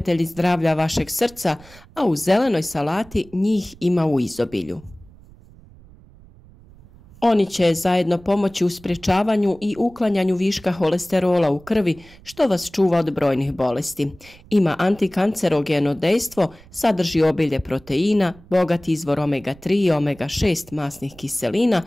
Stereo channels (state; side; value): noise; right; rumble, 24 dB below the sound